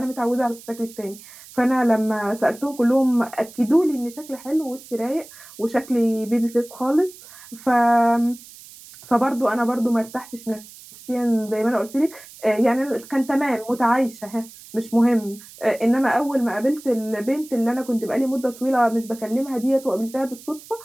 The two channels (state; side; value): noise; right; hiss, 19 dB below the sound